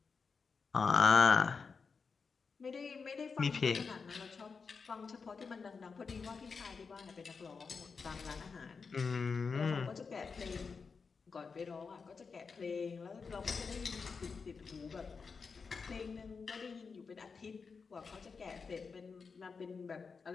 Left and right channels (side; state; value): right; quieter; 5.2 dB